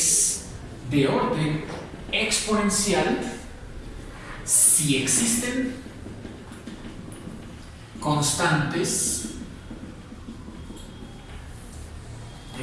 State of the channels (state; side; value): identical; both; correlation 1.00